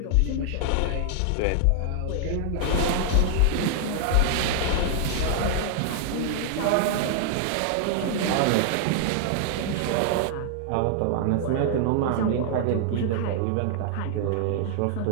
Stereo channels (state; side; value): different; both; correlation -0.01